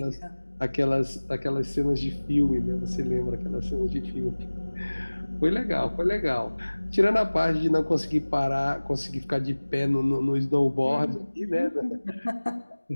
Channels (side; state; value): both; inverted; correlation -1.00